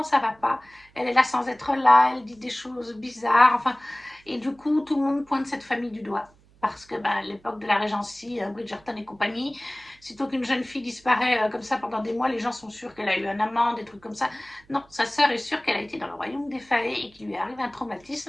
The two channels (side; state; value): right; noise; hum, 29 dB below the sound